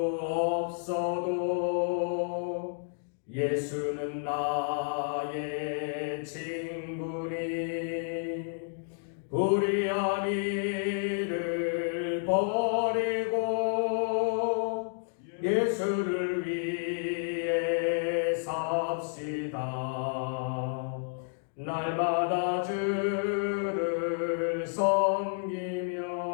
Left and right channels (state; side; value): silent; right; digital silence